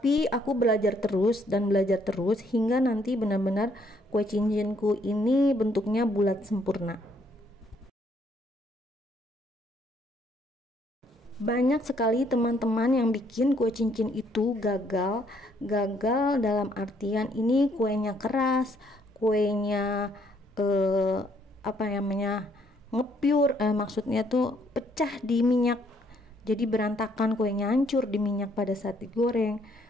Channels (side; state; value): both; normal; correlation 0.68